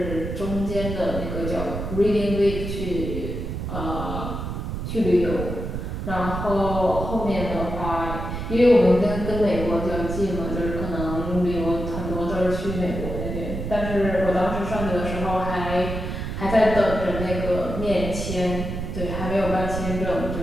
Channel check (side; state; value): right; noise; rumble, 5 dB below the sound